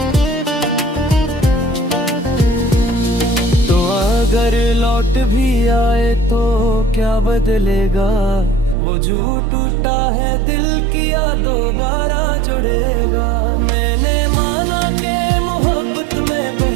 तो अगर लौट भी आए तो क्या बदलेगा, वो जो टूटा है दिल किया दोबारा जुड़ेगा। मैंने माना कि मोहब्बत में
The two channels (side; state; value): left; drops out; at 8.8 s